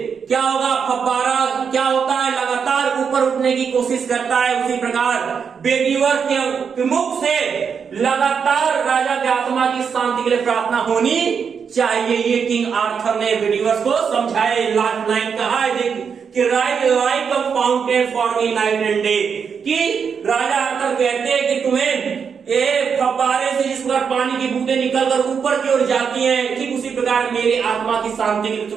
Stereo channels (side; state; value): left; quieter; 6.5 dB